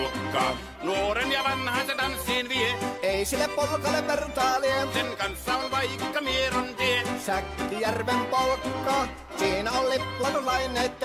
Nuoren ja vanhan se tanssiin vie. Ei sille polkalle vertailie. Sen kanssa on vaikka Mieron tie. Säkkijärven polkka. Siinä on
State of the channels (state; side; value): identical; both; correlation 1.00